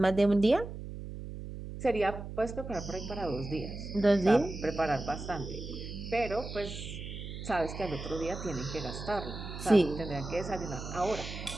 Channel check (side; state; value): right; noise; hum, 9 dB below the sound